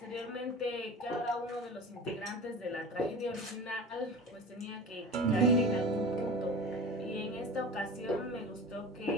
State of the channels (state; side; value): normal; both; correlation 0.34